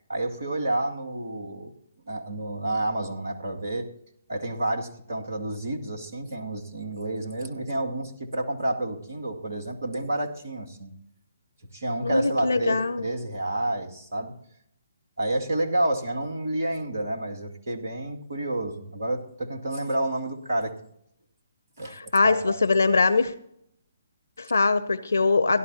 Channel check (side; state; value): both; inverted; correlation -0.88